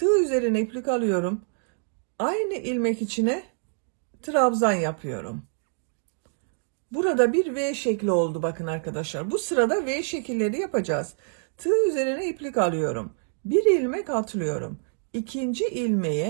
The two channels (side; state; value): left; silent; 61 dB below the other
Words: üzerine iplik alıyorum. Aynı ilmek içine trabzan yapıyorum. Burada bir V şekli oldu bakın arkadaşlar. Bu sırada V şekilleri yapacağız. Tığ üzerine iplik alıyorum. Bir ilmek atlıyorum. İkinci